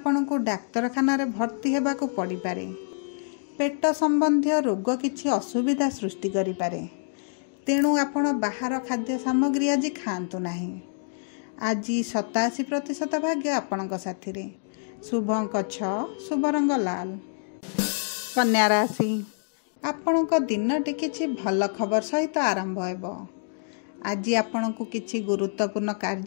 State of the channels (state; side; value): silent; right; digital silence